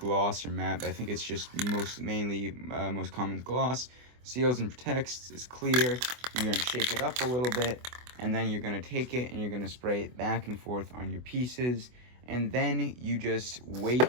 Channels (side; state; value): left; late; 24 ms